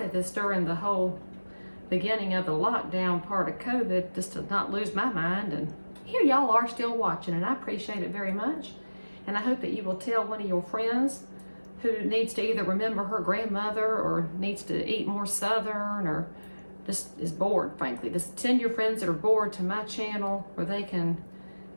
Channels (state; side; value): inverted; both; correlation -1.00